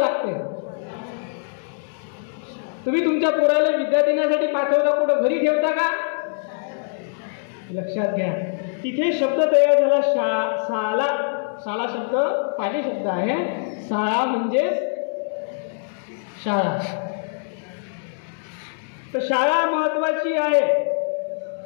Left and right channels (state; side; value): silent; right; digital silence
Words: लागते? तुम्ही तुमच्या पोराला विद्या देण्यासाठी पाठवता, कुठं घरी ठेवता का? लक्षात घ्या. तिथे शब्द तयार झाला शाळा. शाळा शब्द पाली शब्द आहे. शाळा म्हणजे शाळा. तर शाळा महत्वाची आहे.